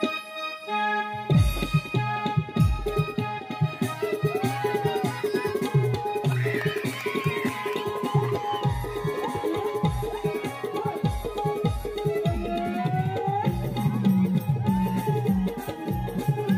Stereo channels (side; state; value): both; identical; correlation 1.00